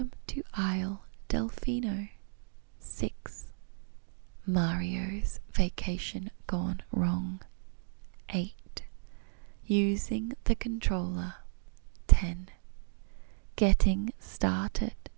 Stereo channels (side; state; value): left; silent; digital silence